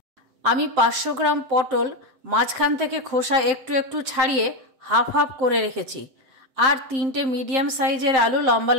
আমি 500 গ্রাম পটল মাঝখান থেকে খোসা একটু একটু ছাড়িয়ে হাফ হাফ করে রেখেছি। আর 3টে মিডিয়াম সাইজের আলু লম্বা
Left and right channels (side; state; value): left; late; 7.6 ms